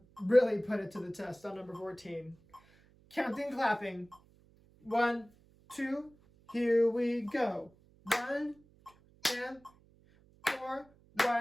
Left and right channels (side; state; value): right; noise; hum, 29 dB below the sound